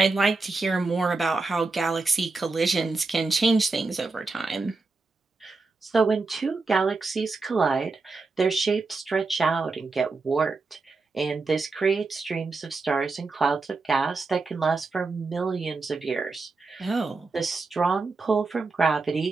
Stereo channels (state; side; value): quieter; left; 3.8 dB